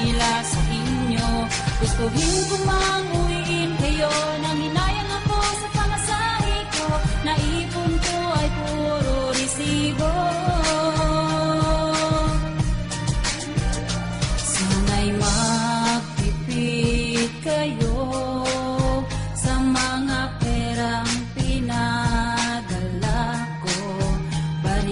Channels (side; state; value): both; identical; correlation 1.00